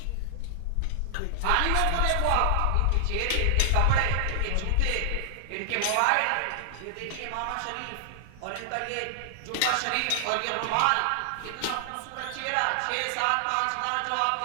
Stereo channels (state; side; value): different; both; correlation -0.01